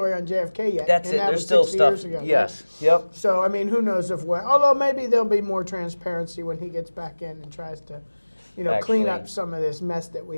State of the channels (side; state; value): both; inverted; correlation -1.00